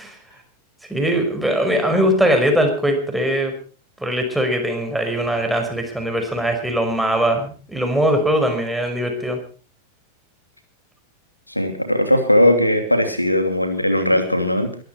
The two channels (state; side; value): normal; both; correlation 0.00